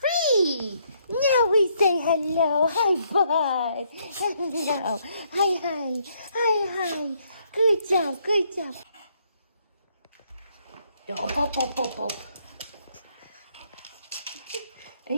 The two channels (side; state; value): both; inverted; correlation -0.71